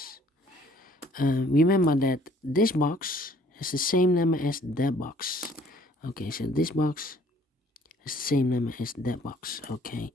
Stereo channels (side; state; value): both; normal; correlation 0.59